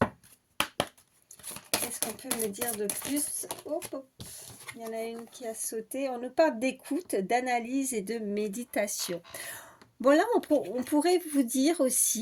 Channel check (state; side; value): identical; both; correlation 1.00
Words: qu'est-ce qu'on peut me dire de plus? Hop, hop. Il y en a une qui a sauté. On nous parle d'écoute, d'analyse et de méditation. Bon, là, on pourrait vous dire